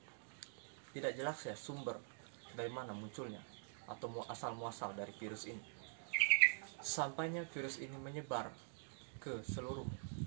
tidak jelas ya sumber dari mana munculnya atau asal-muasal dari virus ini. Sampainya virus ini menyebar ke seluruh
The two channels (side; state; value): left; silent; digital silence